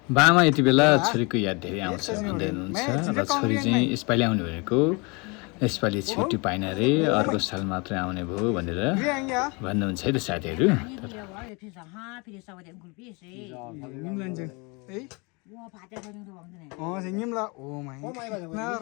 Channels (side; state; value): right; quieter; 29.4 dB